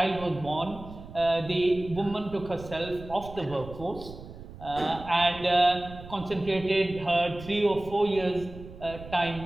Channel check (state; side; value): noise; right; rumble, 15 dB below the sound